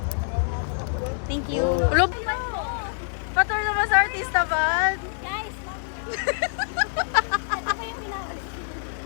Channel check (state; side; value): silent; right; digital silence